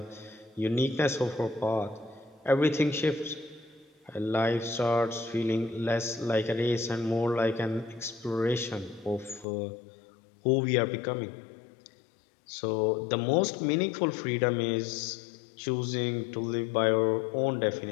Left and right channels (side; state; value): right; drops out; at 9.5 s